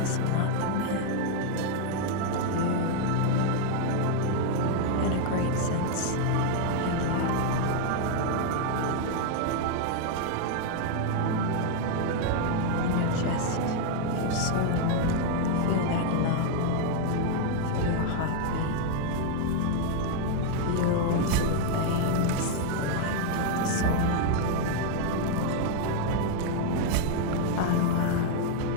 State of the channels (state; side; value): different; both; correlation 0.00